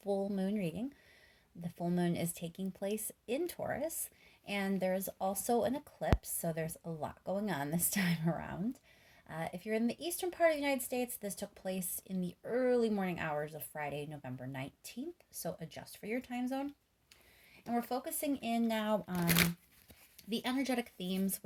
full moon reading. The full moon is taking place in Taurus, and there's also an eclipse, so there's a lot going on this time around. If you're in the eastern part of the United States, this took place in the early morning hours of Friday, November 19th, so adjust for your time zone. And we're focusing in now on the energetic themes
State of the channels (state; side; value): identical; both; correlation 1.00